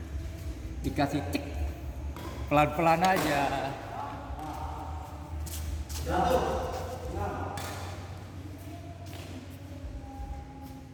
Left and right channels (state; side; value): identical; both; correlation 1.00